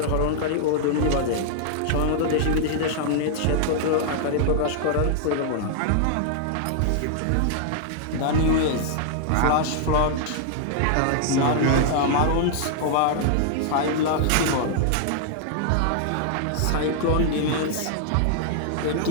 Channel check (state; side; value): different; both; correlation -0.01